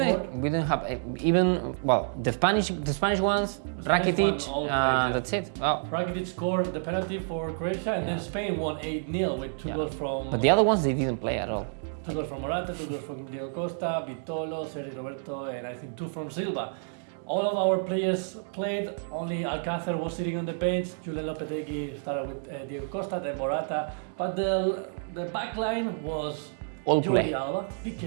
We didn't have even the Spanish ones. Spanish Rakitic one all played, yeah. That's it. Wow. Rakitic scored the penalty for Croatia, and then Spain won 8-0 with 2 goals from. But the other ones they didn't play at all. 2 goals from Morata, 2 goals from Diego Costa, Vitolo, Sergi Roberto, and I think 2 from Silva. All of our players played, only Alcácer was sitting on the bench, Julen Lopetegui started with Diego Costa, then Morata, but the back line was All Jordi play. Alba,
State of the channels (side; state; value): left; silent; digital silence